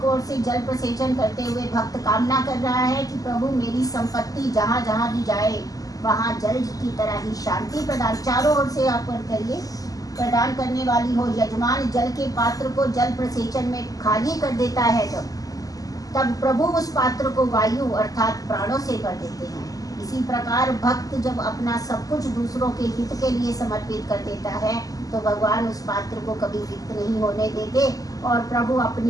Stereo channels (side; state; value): right; late; 0.17 ms